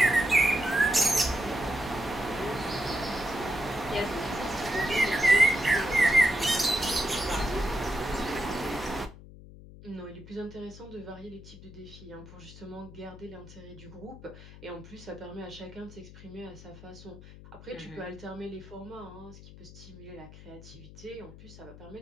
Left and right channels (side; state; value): left; noise; hum, 17 dB below the sound